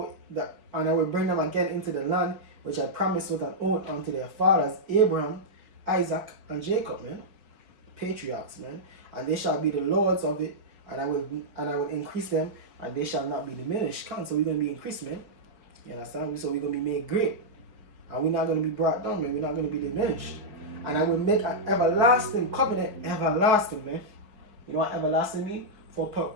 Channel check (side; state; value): left; late; 5.0 ms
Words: that, and I will bring them again into the land which I promised with an oath unto their fathers, Abraham, Isaac, and Jacob, man. Patriarchs, man. And they shall be the lords of it, and I will increase them, and they shall not be diminished. So we're gonna be increased, man. You understand? So we're gonna be made great. And we're not gonna be brought down, man. We're not gonna be diminished. And I will make an everlasting covenant, everlasting, man. You know what everlasting mean? For